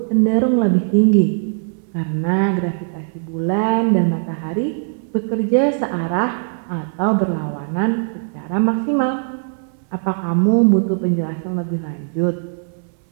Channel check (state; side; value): silent; left; 66 dB below the other